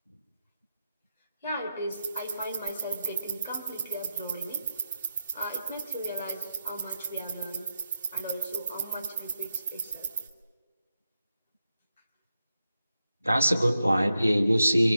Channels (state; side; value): inverted; both; correlation -0.88